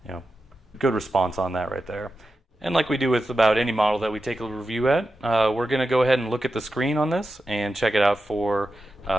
good response on that right there. And like we do with about any model that we take a review at, we're going to go ahead and look at the screen on this and check it out for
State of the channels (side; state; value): both; normal; correlation 0.91